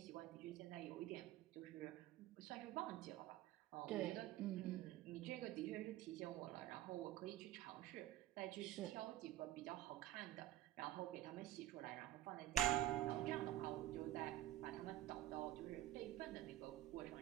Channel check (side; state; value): left; quieter; 13.7 dB